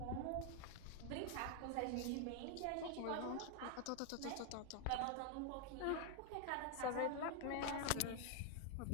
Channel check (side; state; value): both; different; correlation 0.00